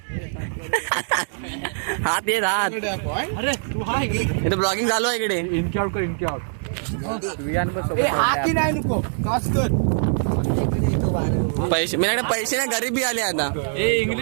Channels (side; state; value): left; silent; digital silence